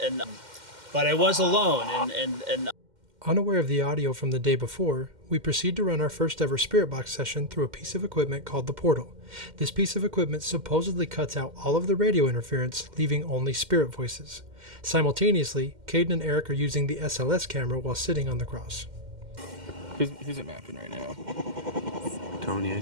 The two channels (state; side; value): late; left; 2.1 ms